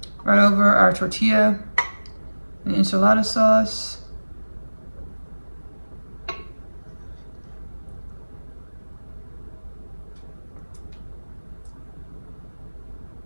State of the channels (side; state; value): both; inverted; correlation -1.00